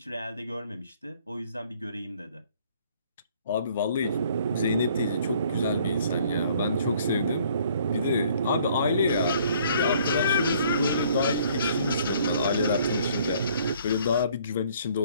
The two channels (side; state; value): both; inverted; correlation -0.60